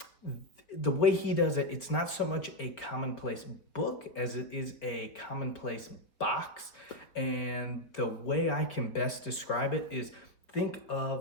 the way he does it, it's not so much a commonplace book as it is a commonplace box. And the way I can best describe it is, think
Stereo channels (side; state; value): right; late; 4.1 ms